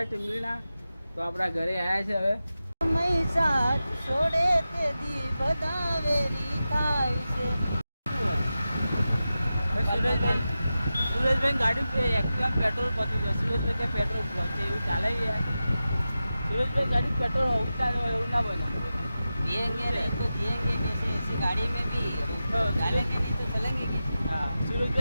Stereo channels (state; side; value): inverted; both; correlation -0.93